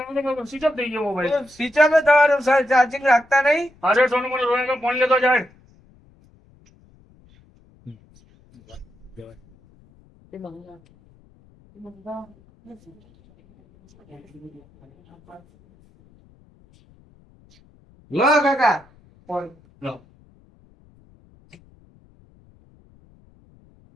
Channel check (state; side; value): noise; left; rumble, 29 dB below the sound